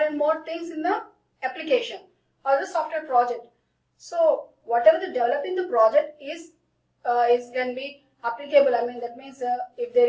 more things in the application or the software project. So whatever the developing the project is can be applicable. That means if there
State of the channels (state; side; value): identical; both; correlation 1.00